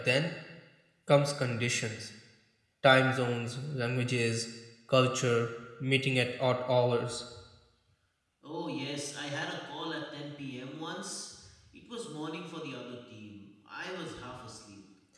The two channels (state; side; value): identical; both; correlation 1.00